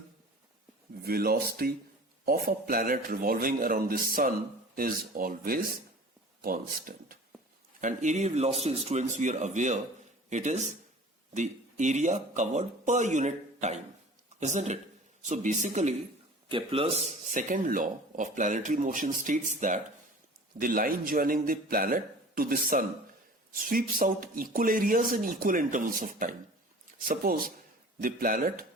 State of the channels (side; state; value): both; normal; correlation 0.43